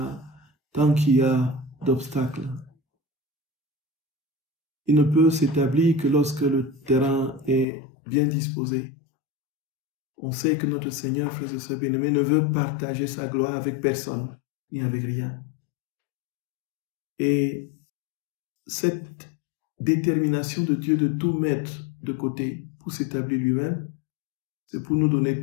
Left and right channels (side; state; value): right; drops out; at 7.7 s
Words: a d'obstacles. Il ne peut s'établir que lorsque le terrain est bien disposé. On sait que notre Seigneur, frères et sœurs bien-aimés, ne veut partager sa gloire avec personne, ni avec rien. Et cette détermination de Dieu de tout mettre de côté pour s'établir lui-même, c'est pour nous donner